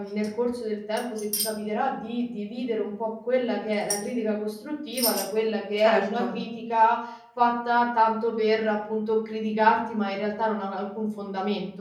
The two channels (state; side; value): identical; both; correlation 1.00